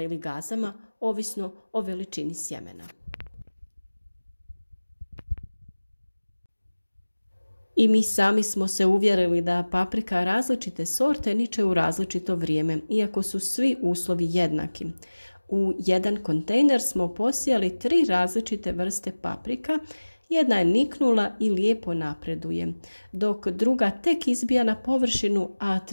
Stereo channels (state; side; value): inverted; both; correlation -1.00